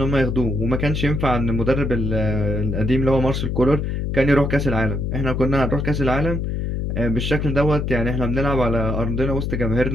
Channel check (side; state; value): left; noise; hum, 1 dB below the sound